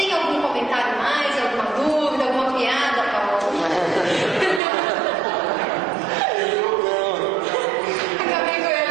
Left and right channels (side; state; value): left; drops out; at 4.6 s